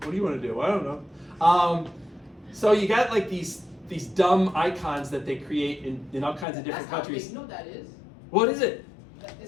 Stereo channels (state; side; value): drops out; right; at 6.5 s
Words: What do you want to do? I don't know. So you got like these dumb icons that they create in all kinds of different That's countries. outdated. You know what that is? What is it?